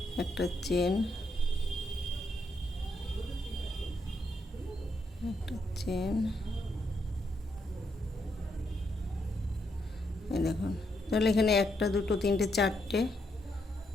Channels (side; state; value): both; normal; correlation 0.78